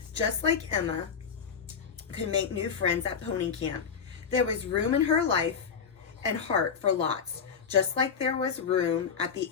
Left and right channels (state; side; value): quieter; right; 6.5 dB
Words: Just like Emma could make new friends at Pony Camp. There was room in her life and heart for lots, just like there was room at the